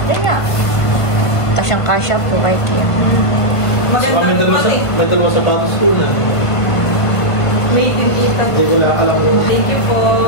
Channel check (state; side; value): late; right; 1.5 ms